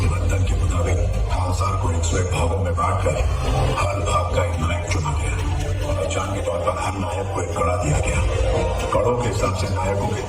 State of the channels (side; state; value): both; identical; correlation 1.00